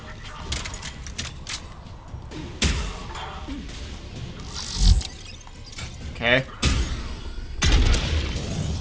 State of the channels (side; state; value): both; identical; correlation 1.00